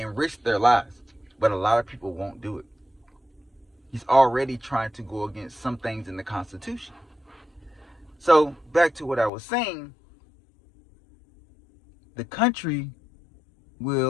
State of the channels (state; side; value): drops out; right; at 9.3 s